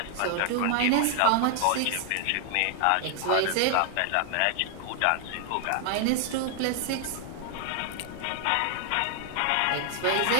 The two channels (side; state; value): both; different; correlation 0.00